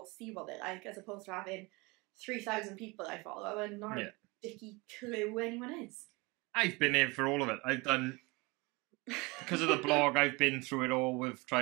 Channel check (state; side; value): quieter; left; 25.5 dB